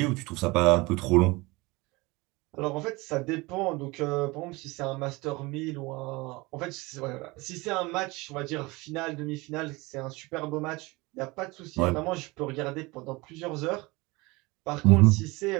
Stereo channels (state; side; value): quieter; left; 23.5 dB